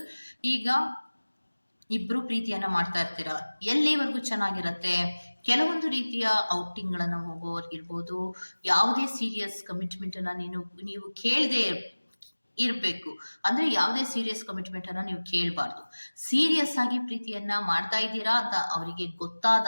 ಈಗ ಇಬ್ರು ಪ್ರೀತಿಯನ್ನ ಮಾಡ್ತಾ ಇರ್ತೀರಾ, ಎಲ್ಲಿವರೆಗೂ ಚೆನ್ನಾಗಿರತ್ತೆ, ಕೆಲವೊಂದು ರೀತಿಯ ಔಟಿಂಗ್ ಗಳನ್ನ ಹೋಗೋರ್ಗಿರ್ಬೋದು, ಯಾವುದೇ ಸೀರಿಯಸ್ ಕಮಿಟ್ಮೆಂಟ್ ಅನ್ನ ನೀವು ಕೇಳದೆ ಇರ್ಬೇಕು. ಅಂದ್ರೆ ಯಾವುದೇ ಸೀರಿಯಸ್ ಕಮಿಟ್ಮೆಂಟ್ ಅನ್ನ ನೀವು ಕೇಳಬಾರ್ದು. ಸೀರಿಯಸ್ ಆಗಿ ಪ್ರೀತಿಯನ್ನ ಮಾಡ್ತಾ ಇದ್ದೀರಾ ಅಂತ ಅವರಿಗೆ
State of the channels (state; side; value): inverted; both; correlation -1.00